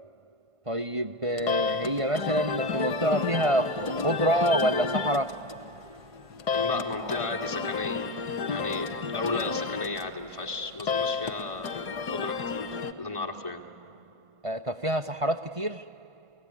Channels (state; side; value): late; left; 1.5 ms